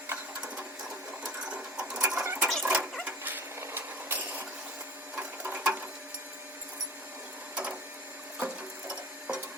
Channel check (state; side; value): normal; both; correlation 0.42